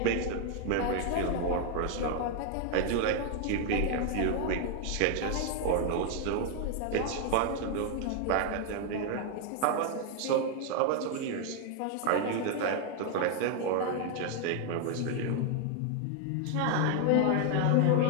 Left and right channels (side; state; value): both; different; correlation 0.00